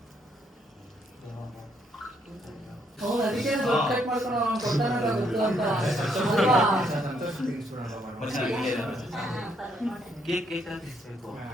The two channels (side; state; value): both; normal; correlation 0.72